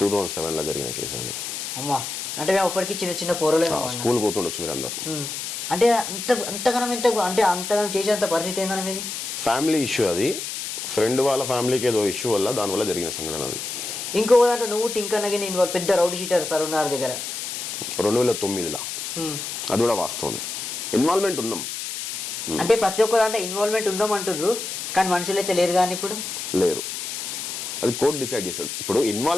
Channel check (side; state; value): left; noise; hiss, 5 dB below the sound